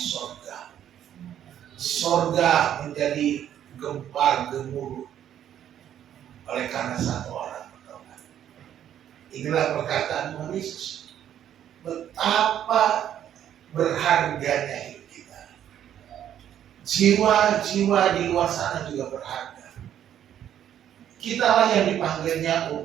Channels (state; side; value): quieter; left; 10.4 dB